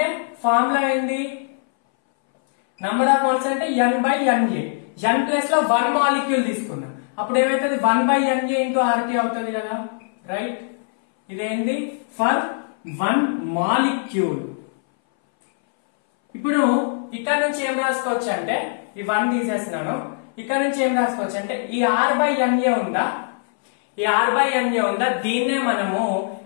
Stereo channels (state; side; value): silent; right; 62 dB below the other